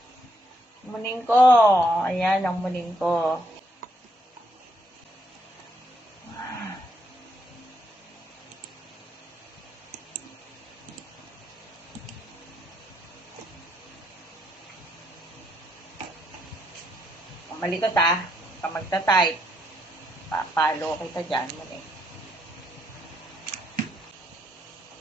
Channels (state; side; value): normal; both; correlation 0.74